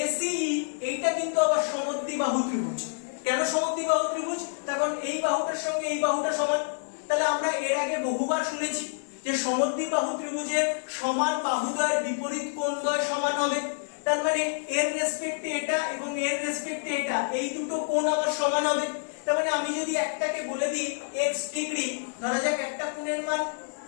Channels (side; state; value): right; silent; digital silence